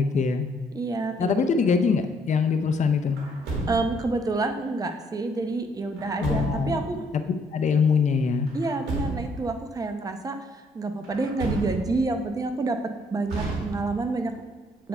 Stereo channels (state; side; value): normal; both; correlation 0.68